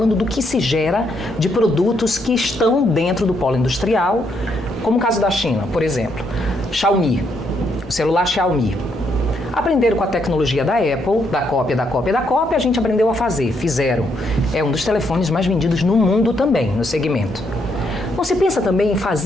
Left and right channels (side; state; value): both; normal; correlation 0.75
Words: do que se gera de produtos que estão dentro do polo industrial, como o caso da China, por exemplo. Xiaomi, o celular Xiaomi. Aprenderam com a tecnologia da Apple, da cópia, a gente aprendeu a fazer, fizeram. É um dos telefones mais vendidos no mundo também, no segmento. Não se pensa também em